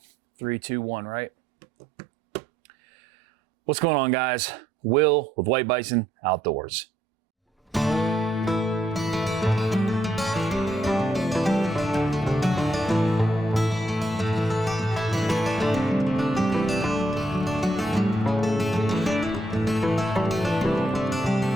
3, 2, 1, right? What's going on, guys? Will with White Bison Outdoors.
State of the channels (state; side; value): normal; both; correlation 0.75